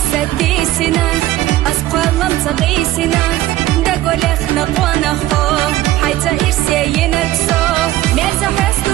سديسنا أسقلم تغيسنا دقول اخنق ونخو حيتا إرسيين الكسو ميزا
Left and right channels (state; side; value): quieter; left; 15.4 dB